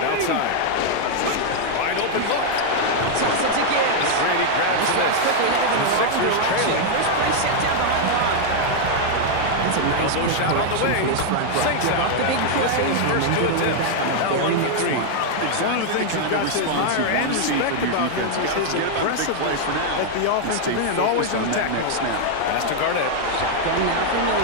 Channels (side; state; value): both; different; correlation 0.00